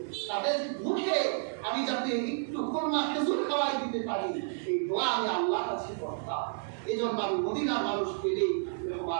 তাদের মুখে আমি যাতে একটু খুরমা খেজুর খাওয়াই দিতে পারি, এই দোয়া আমি আল্লাহর কাছে করতাম। এই জন্য আমি মদিনার মানুষ পেলেই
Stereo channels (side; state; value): left; silent; digital silence